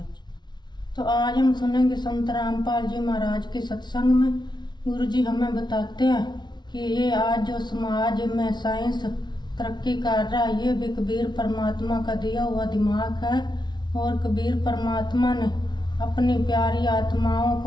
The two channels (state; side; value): late; right; 0.21 ms